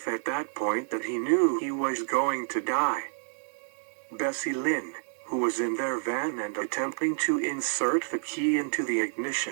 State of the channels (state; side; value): silent; left; digital silence